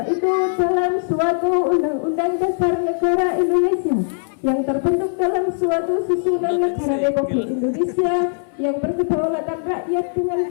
itu dalam suatu Undang-Undang Dasar Negara Indonesia yang terbentuk dalam suatu susunan negara Republik Indonesia yang berkedaulatan rakyat dengan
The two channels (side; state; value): right; silent; 66 dB below the other